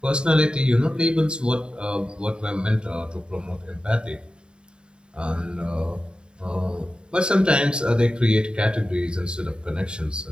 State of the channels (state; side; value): late; left; 0.051 ms